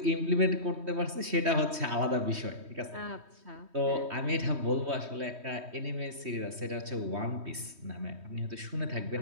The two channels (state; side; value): late; left; 3.2 ms